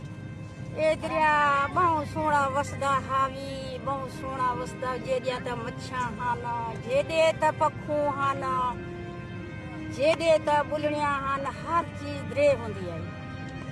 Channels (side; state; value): both; identical; correlation 1.00